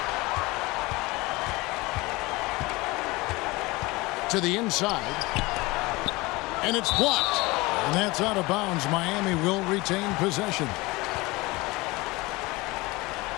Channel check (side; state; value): right; quieter; 22.5 dB